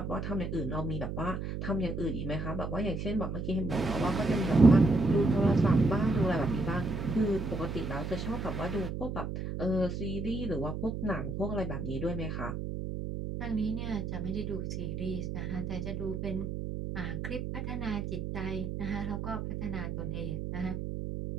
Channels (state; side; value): noise; right; hum, 4 dB below the sound